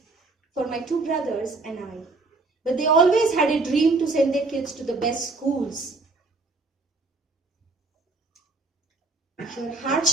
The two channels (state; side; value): quieter; left; 3.6 dB